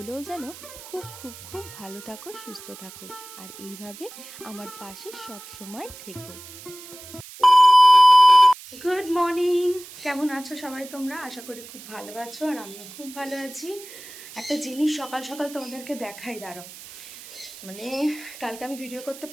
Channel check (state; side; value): noise; right; hiss, 16 dB below the sound